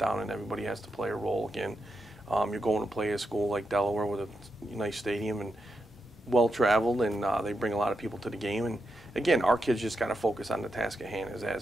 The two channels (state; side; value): normal; both; correlation 0.86